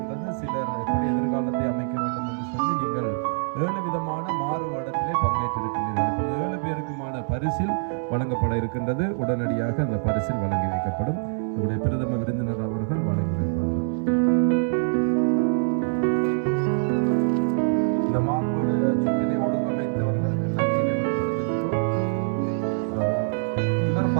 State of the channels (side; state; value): left; silent; 62 dB below the other